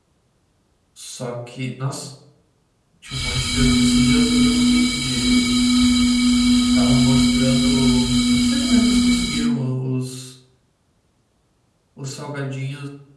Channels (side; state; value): both; identical; correlation 1.00